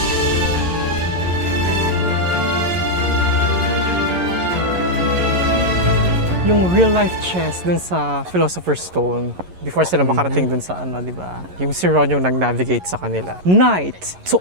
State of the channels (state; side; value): late; left; 11 ms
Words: Yung real life chess dun sa Philosopher's Stone before sila makarating dun sa di ba? Yung si Ron yung nag-navigate sa kanila. Knight to